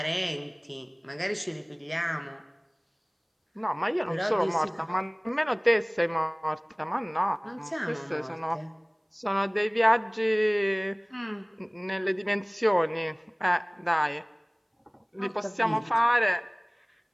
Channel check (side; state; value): both; identical; correlation 1.00